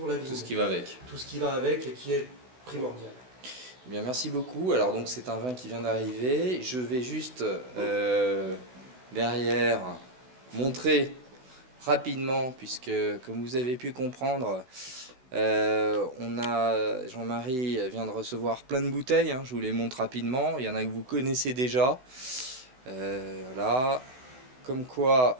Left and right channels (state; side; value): late; left; 16 ms